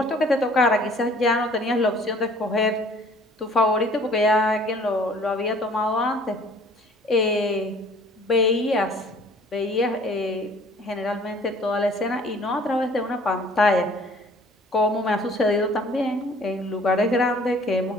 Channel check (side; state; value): both; normal; correlation 0.54